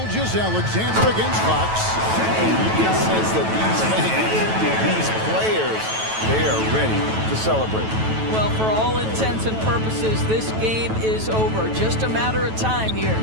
against Fox. And you can sense that these fans, these players, they are ready to celebrate. Well, for all intents and purposes, this game is over. Just a matter of time here.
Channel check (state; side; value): late; left; 9.2 ms